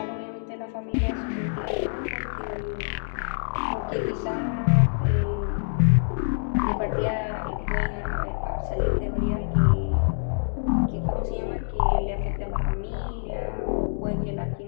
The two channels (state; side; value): silent; right; digital silence